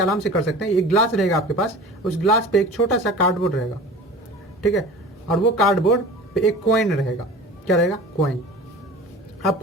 से कर सकते हैं। एक ग्लास रहेगा आपके पास, उस ग्लास पे एक छोटा सा कार्डबोर्ड रहेगा, ठीक है, और वो कार्डबोर्ड पे एक कॉइन रहेगा। क्या रहेगा, कॉइन।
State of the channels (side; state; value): both; normal; correlation 0.38